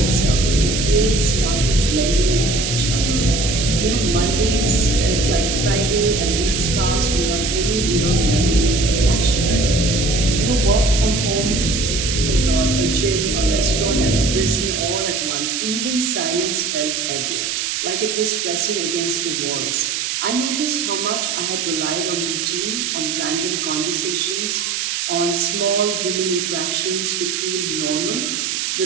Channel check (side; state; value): right; noise; hiss, 1 dB below the sound